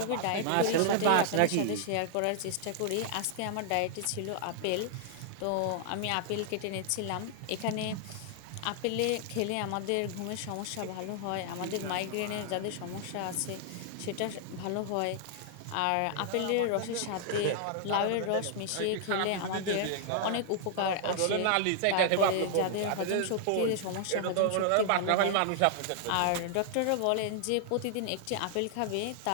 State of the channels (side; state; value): both; different; correlation -0.01